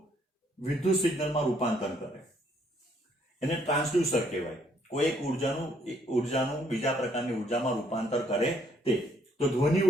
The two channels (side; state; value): both; normal; correlation 0.67